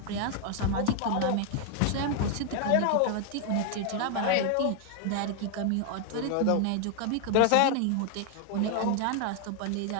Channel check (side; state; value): both; different; correlation 0.00